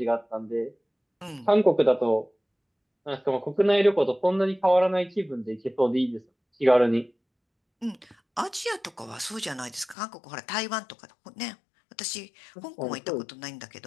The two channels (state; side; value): drops out; right; at 10.0 s